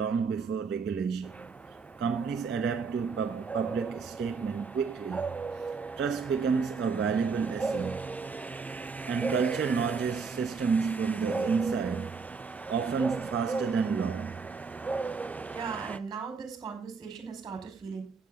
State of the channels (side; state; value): left; quieter; 5.1 dB